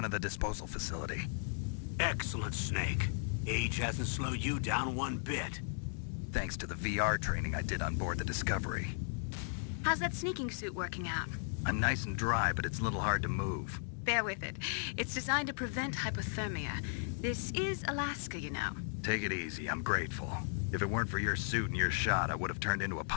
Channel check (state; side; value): silent; right; digital silence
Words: of the disposal facility. Excellent, Snake. Age hasn't slowed you down one bit. Thanks to the VR training I did on board the Discovery. How's that sneaking suit working out? I'm nice and dry, but it's a little hard to move. Bear with it. It's designed to prevent hypothermia. This is Alaska, you know. Take it easy, I'm grateful. If it weren't for your suit and your shot, I would have turned into a